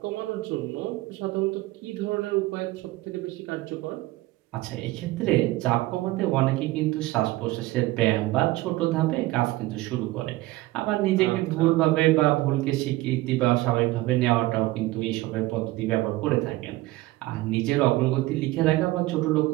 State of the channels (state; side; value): quieter; left; 18.6 dB